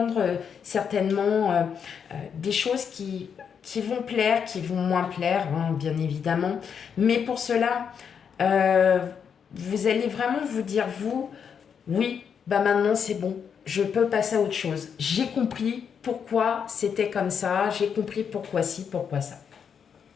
certainement des choses qui vont plaire, qui vont moins plaire, hein, bien évidemment. Mais pour cela, euh, vous allez vraiment vous dire, vous, oui, bah maintenant c'est bon, je peux passer à autre chose. J'ai compris pourquoi c'était comme ça, j'ai compris pourquoi ci, pourquoi ça.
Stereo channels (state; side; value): quieter; right; 7.2 dB